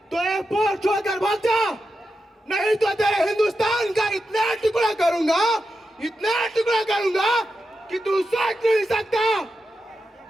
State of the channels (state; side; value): normal; both; correlation 0.89